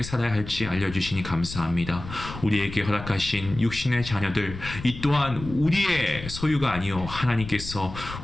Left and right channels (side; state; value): left; noise; rumble, 11 dB below the sound